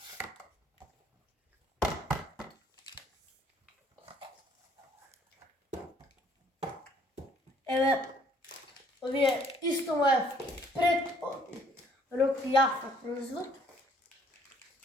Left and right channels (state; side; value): normal; both; correlation 0.62